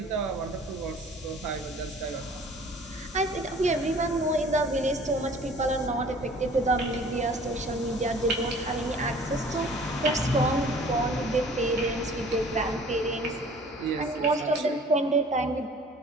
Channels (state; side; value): normal; both; correlation 0.49